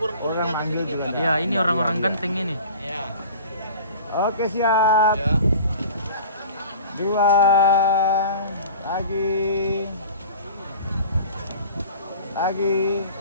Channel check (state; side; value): inverted; both; correlation -0.42